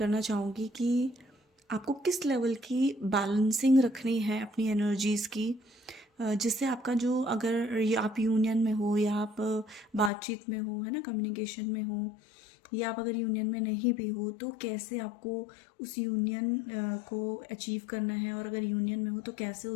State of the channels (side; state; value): right; drops out; at 10.1 s